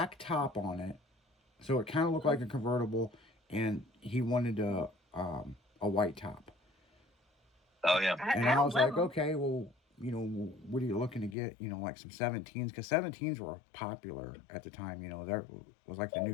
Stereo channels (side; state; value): right; drops out; at 11.4 s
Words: top on it. So it kind of looked like a convertible. And he wanted a white top. Oh, yeah. And I was like, okay, well, you know, what are you looking to get? You know, like some 17s. Because 17s were popular at the time. You know, that was like the